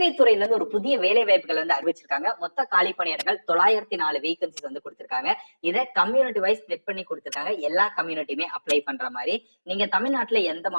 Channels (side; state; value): both; inverted; correlation -1.00